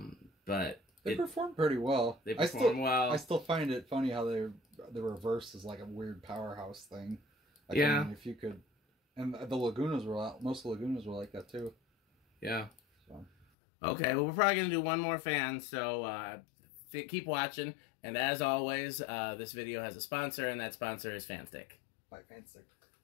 But they perform pretty well. They perform well. I still find it funny how the reverse is like a weird powerhouse thing. Like, yeah. I mean, if you could, and the Lagunas most Lagunas were like that too. Yeah. So. Okay. Well, we're probably gonna do one more fan. So keep watching. And as always, this video has a sponsor, and that sponsor is Fanstick. By Fanstick.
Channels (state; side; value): drops out; right; at 13.5 s